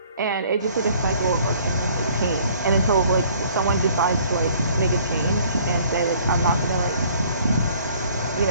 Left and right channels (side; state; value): both; inverted; correlation -0.57